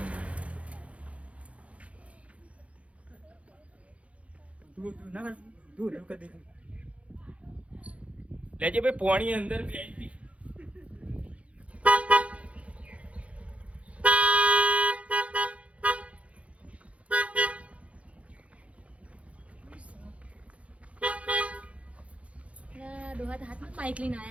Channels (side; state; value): left; late; 0.064 ms